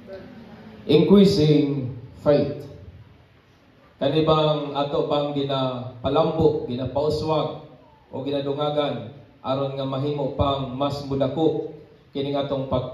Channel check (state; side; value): identical; both; correlation 1.00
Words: Increasing faith. Kanibang ato bang ginapalambo, ginapauswag o ginadungagan aron nga mahimo pang mas mudako kining atong